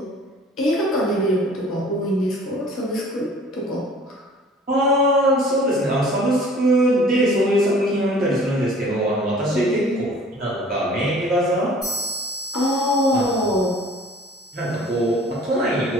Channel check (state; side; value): normal; both; correlation 0.50